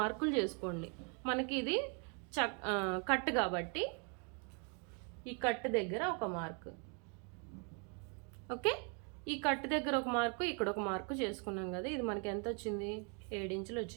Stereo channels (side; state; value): left; quieter; 37.4 dB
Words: చేసుకోండి. మనకి ఇది కట్ కాబట్టి ఈ కట్ దగ్గర ఒక మార్కు. ఓకే, ఈ కట్ దగ్గర ఒక మార్కు, ఇక్కడ ఒక మార్కు చేసుకున్నాం కదా. ఇది మనకి ఎంత వచ్చింది? 7 ఇంచులు